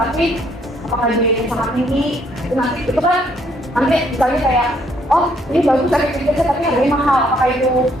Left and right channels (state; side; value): normal; both; correlation 0.68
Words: apakah biayanya sangat tinggi, itu nanti itu kan nanti misalnya kayak oh ini bagus efektivitasnya tapi harganya mahal, apakah itu